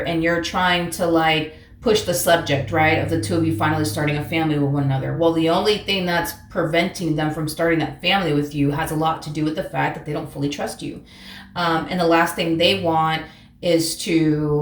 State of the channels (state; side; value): identical; both; correlation 1.00